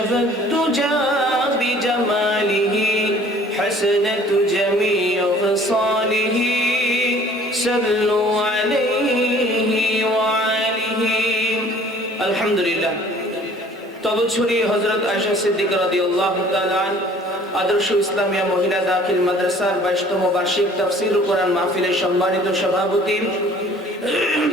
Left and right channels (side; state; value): both; normal; correlation 0.52